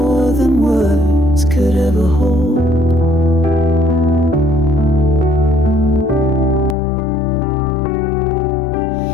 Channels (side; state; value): right; drops out; at 6.8 s